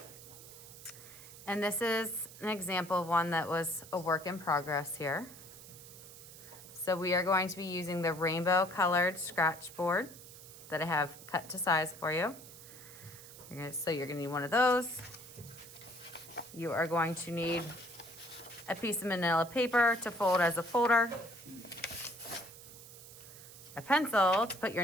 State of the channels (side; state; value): right; noise; hiss, 17 dB below the sound